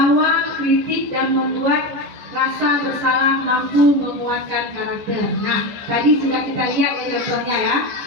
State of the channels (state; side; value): late; left; 14 ms